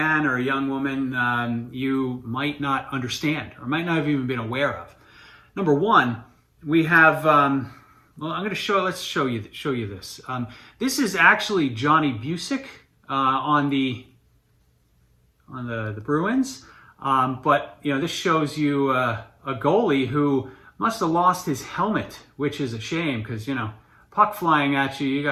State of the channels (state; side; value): identical; both; correlation 1.00